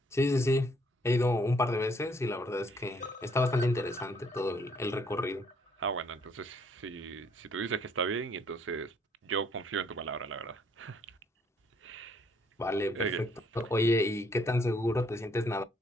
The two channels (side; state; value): both; normal; correlation 0.66